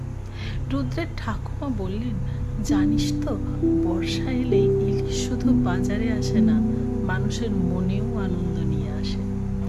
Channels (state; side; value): identical; both; correlation 1.00